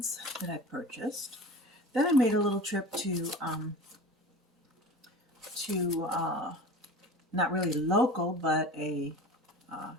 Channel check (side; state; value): both; normal; correlation 0.36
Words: that I purchased. Then I made a little trip to not really local, but a